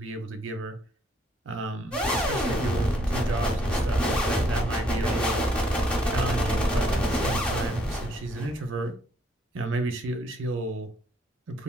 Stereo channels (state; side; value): normal; both; correlation 0.68